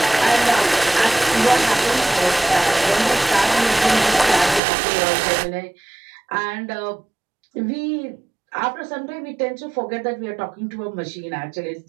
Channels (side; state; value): left; drops out; at 4.6 s